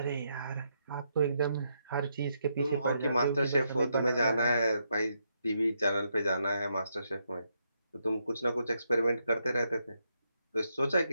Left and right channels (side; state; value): both; inverted; correlation -0.79